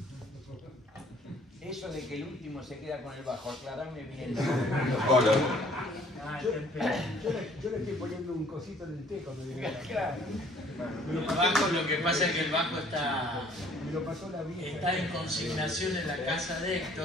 Eso de que el último se queda con el bajo, aclarame bien. Yo le estoy poniendo un cosito en el té cuando llegué. Claro. El bajo, lo que pasa es que el bajo está En consignación en la casa de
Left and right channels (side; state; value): both; normal; correlation 0.57